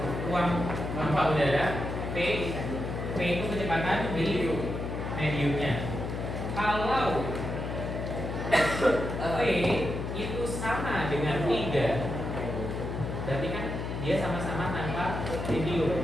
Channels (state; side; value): noise; left; hum, 4 dB below the sound